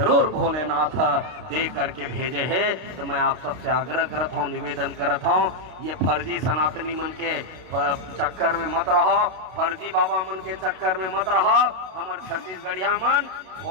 भोलेनाथ दे करके भेजे है। तो मैं आप सबसे आग्रह करत हूँ, निवेदन करत हूँ, ये फर्जी सनातनी मन के चक्कर में मत रहो, फर्जी बाबा मन के चक्कर में मत रहो। हमारे छत्तीसगढ़िया मन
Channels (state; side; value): late; left; 32 ms